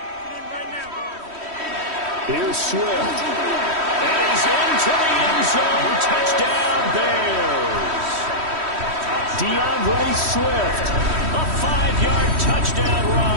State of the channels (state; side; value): late; left; 3.1 ms